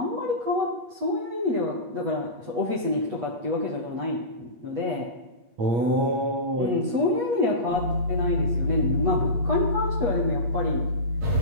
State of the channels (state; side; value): late; left; 8.3 ms